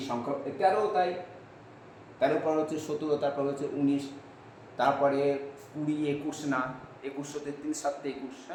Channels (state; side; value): identical; both; correlation 1.00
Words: সংখ্যা 13ও তাই, 13 পর হচ্ছে 17, তারপর হচ্ছে 19, তারপরে 20, 21 না, 21 হতে 3 7 21,